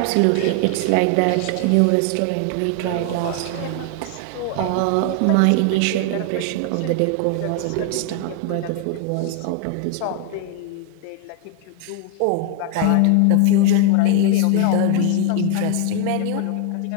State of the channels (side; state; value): both; different; correlation 0.00